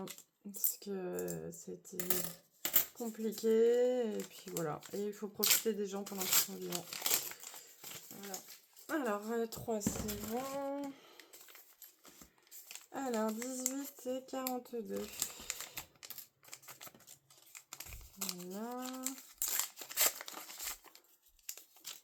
parce que c'était compliqué, et puis voilà. Et il faut profiter des gens pendant qu'ils sont vivants. Voilà. Alors, 3, c'est bon. Alors, 18 et 42. Voilà.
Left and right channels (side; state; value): both; identical; correlation 1.00